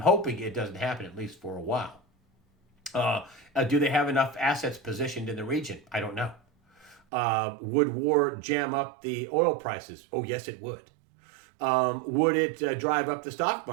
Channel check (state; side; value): drops out; left; at 7.0 s